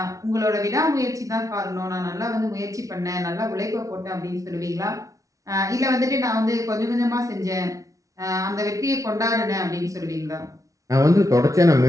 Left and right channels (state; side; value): late; left; 0.16 ms